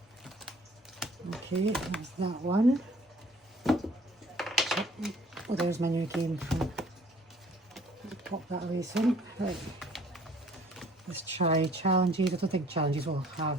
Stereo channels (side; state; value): both; normal; correlation 0.56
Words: Okay, that's that one. Oh, there's my new game. Pop that away soon. Right. Let's try challenges. I don't think challenges will have